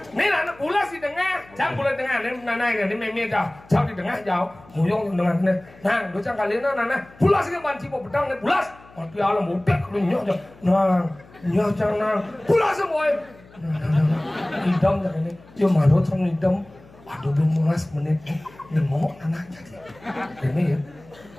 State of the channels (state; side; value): noise; left; hum, 24 dB below the sound